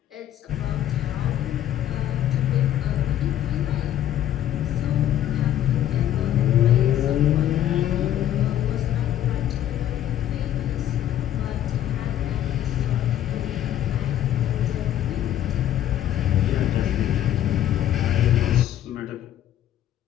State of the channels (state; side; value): quieter; right; 11.6 dB